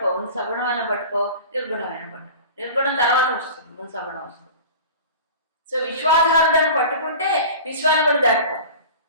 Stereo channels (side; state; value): both; inverted; correlation -0.37